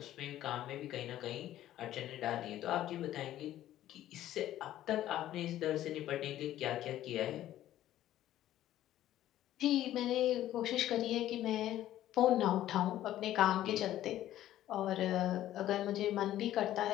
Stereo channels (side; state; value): right; quieter; 13.1 dB